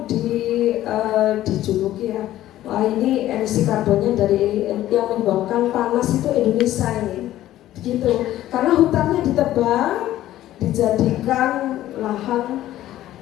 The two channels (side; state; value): right; quieter; 13.8 dB